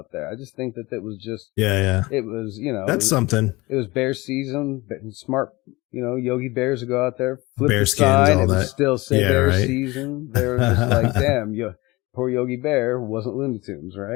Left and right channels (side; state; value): right; quieter; 21.9 dB